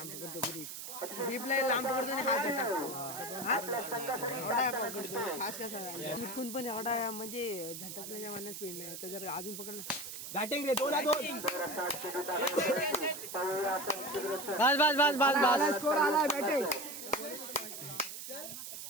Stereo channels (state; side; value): noise; right; hiss, 9 dB below the sound